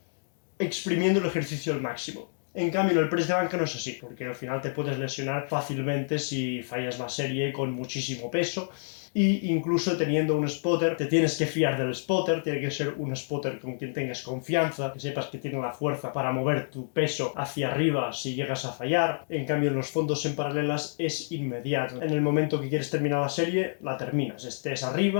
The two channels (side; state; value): right; silent; digital silence